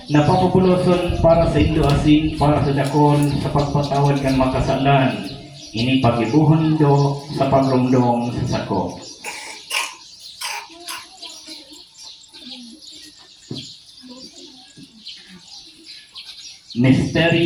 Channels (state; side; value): identical; both; correlation 1.00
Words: napapupuloson para sa indo asing para sa dakon sa pagpatawad kan makasalan. Ini pagibuhon indo sa pagrumdong sa sako.